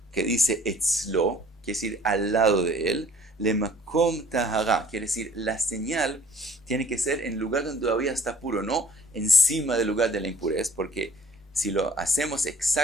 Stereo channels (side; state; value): both; normal; correlation 0.54